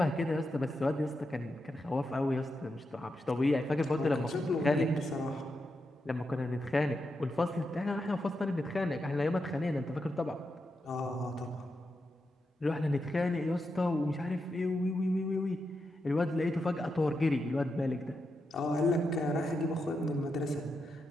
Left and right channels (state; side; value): normal; both; correlation 0.86